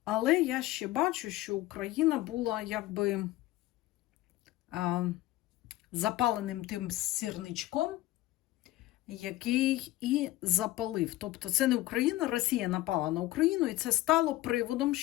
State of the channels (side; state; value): right; quieter; 16.9 dB